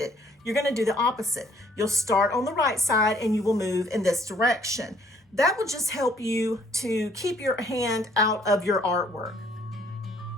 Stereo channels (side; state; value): both; normal; correlation 0.62